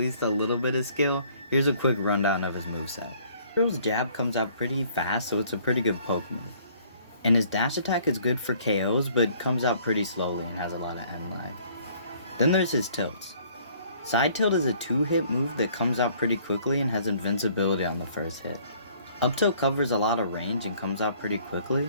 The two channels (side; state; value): both; inverted; correlation -0.59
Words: a little bit of skill, here's a quick rundown of his moveset. Hero's jab comes out pretty fast, so it's a pretty good poke move. And his dash attack is good for KOs, but comes out pretty slowly and has a lot of end lag. Then there's his tilts. Side tilt is a 2-hit move that comes out pretty quickly and has invincibility on the first hit. Up tilt covers a lot of range and comes out pretty